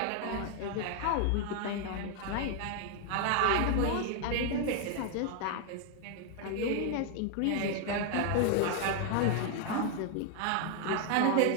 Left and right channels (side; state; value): both; different; correlation 0.00